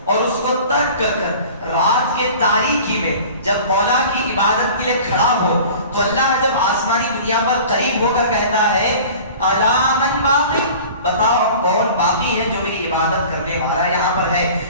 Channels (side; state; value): both; inverted; correlation -0.42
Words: اور اس کو ترک کر کر رات کے تاریکی میں جب مولا کی عبادت کے لیے کھڑا ہو تو اللہ جب آسمانی دنیا پر قریب ہو کر کہتا ہے الا من باقی, بتاؤ کون باقی ہے جو میری عبادت کرنے والا یہاں پر ہے.